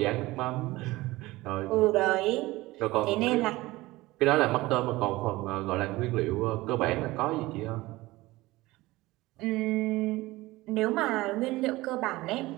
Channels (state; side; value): quieter; left; 19.4 dB